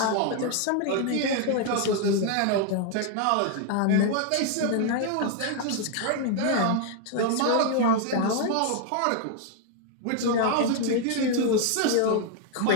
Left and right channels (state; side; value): different; both; correlation 0.00